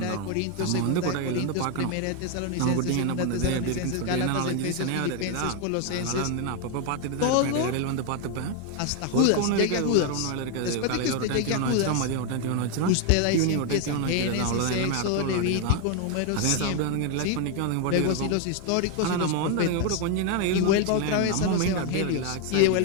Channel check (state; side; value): different; both; correlation 0.01